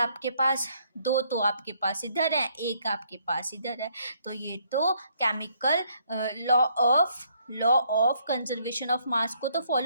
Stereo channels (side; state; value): both; inverted; correlation -0.69